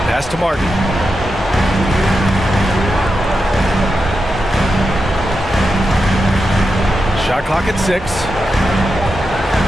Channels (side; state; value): both; normal; correlation 0.88